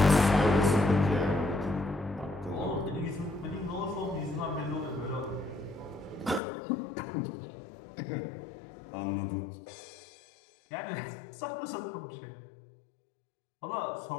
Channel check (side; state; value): right; drops out; at 6.4 s